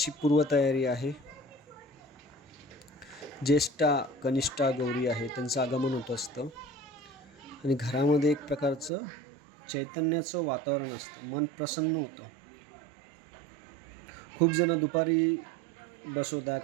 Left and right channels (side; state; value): left; drops out; at 8.9 s